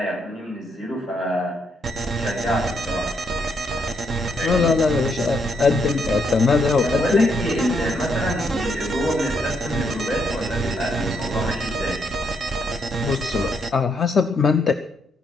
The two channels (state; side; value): normal; both; correlation 0.75